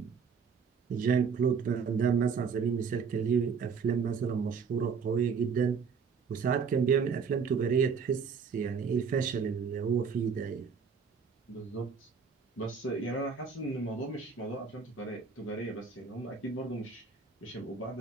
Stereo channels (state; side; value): quieter; left; 5.9 dB